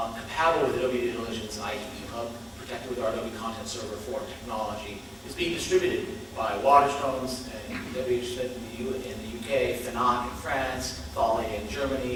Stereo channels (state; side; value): identical; both; correlation 1.00